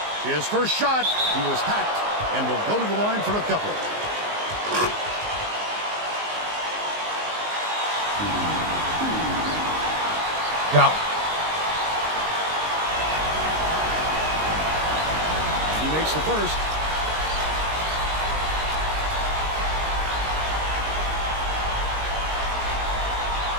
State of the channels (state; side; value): late; left; 19 ms